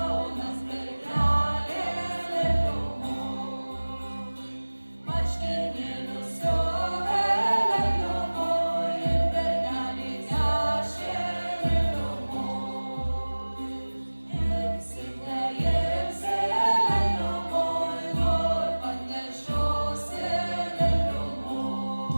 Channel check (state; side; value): inverted; both; correlation -1.00